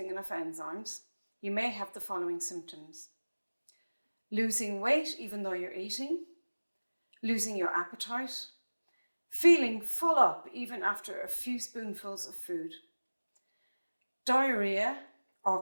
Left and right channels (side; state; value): both; inverted; correlation -1.00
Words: enough enzymes, you may have the following symptoms: losing weight even though you're eating, losing your appetite, feeling full up even after a few spoonfuls of food, diarrhea or